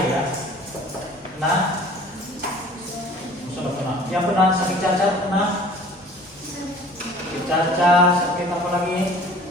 ya. Kena? Sudah pernah. Yang pernah sakit cacat pernah? Sakit cacat, sakit apa lagi?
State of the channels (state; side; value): normal; both; correlation 0.47